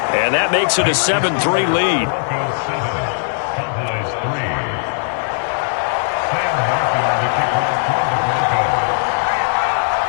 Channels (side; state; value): right; silent; digital silence